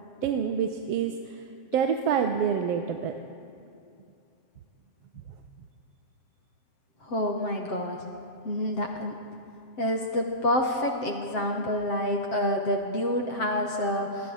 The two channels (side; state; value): right; late; 7.6 ms